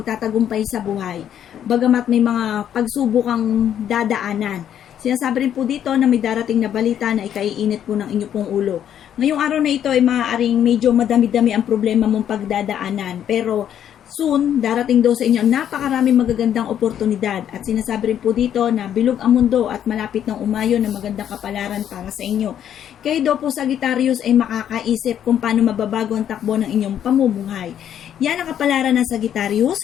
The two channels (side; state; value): right; quieter; 9.9 dB